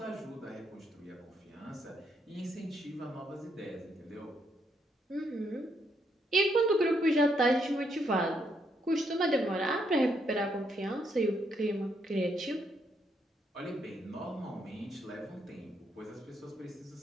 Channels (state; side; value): normal; both; correlation 0.75